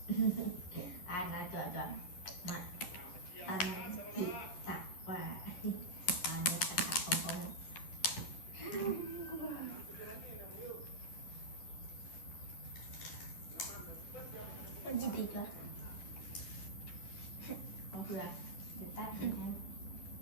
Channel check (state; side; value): late; right; 11 ms